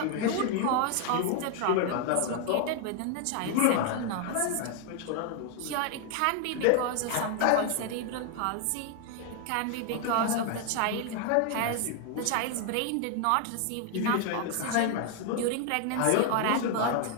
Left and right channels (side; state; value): both; different; correlation 0.00